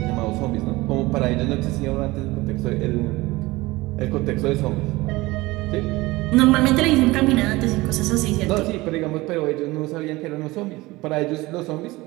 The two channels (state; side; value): quieter; left; 20.6 dB